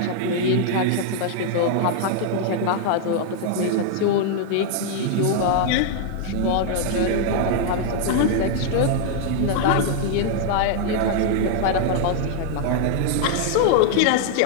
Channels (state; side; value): different; both; correlation 0.00